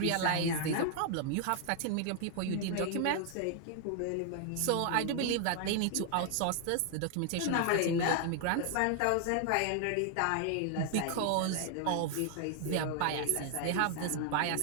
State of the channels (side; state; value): both; different; correlation 0.00